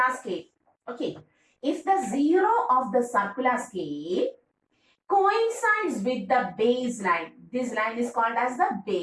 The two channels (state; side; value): identical; both; correlation 1.00